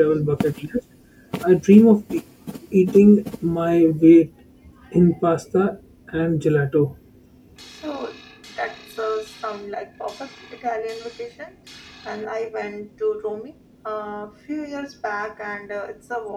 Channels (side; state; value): both; identical; correlation 1.00